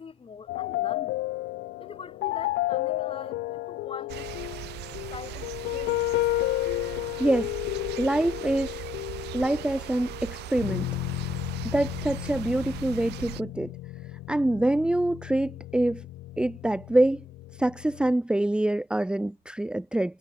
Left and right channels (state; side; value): normal; both; correlation 0.72